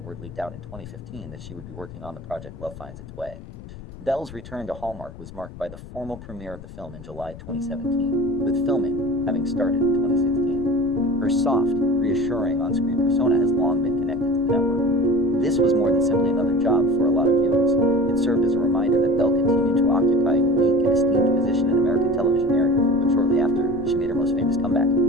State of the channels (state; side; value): noise; left; rumble, 15 dB below the sound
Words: word leaked out in 2015 that she would be working on the project Love Finds Its Way. Bell's return to Hallmark was marked by the formal premiere of the film in July 2017, with filming having started in 2016. Her soft, reassuring on-screen persona has long been connected to the network. This was more than simply another job for a lot of viewers. It served as a reminder that Bell continued to occupy a unique and esteemed position in American television narrative, but shortly after, she made her most famous comeback.